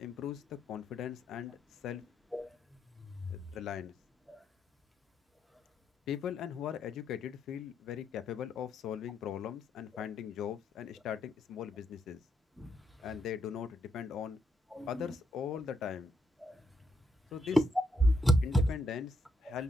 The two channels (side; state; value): both; normal; correlation 0.77